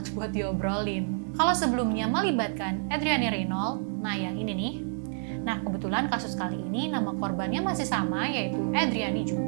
buat diobrolin. Kalau sebelumnya melibatkan Adriani Reynold, nah yang ini nih. Nah, kebetulan kasus kali ini nama korbannya masih sama, yaitu Adriani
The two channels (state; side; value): silent; left; digital silence